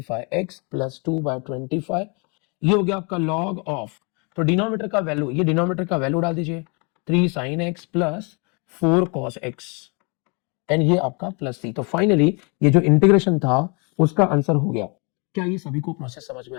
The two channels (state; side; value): quieter; right; 33.2 dB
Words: प्लस 2/25, ये हो गया आपका log ऑफ, तो डिनोमिनेटर का वैल्यू, ये डिनोमिनेटर का वैल्यू डाल दीजिए 3 sin x plus 4 cos x and ये आपका प्लस सी। तो फाइनली ये जो इंटीग्रेशन था उसका आंसर हो गया। क्या ये सभी को प्रोसेस समझ